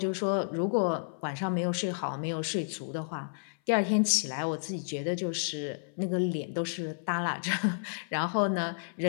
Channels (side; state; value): right; silent; 55 dB below the other